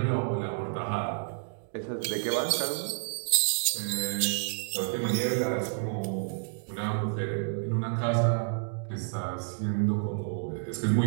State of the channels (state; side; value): silent; left; digital silence